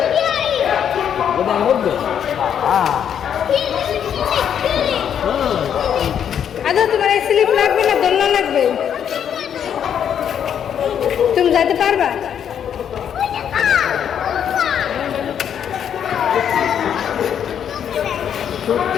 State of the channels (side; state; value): right; quieter; 8.7 dB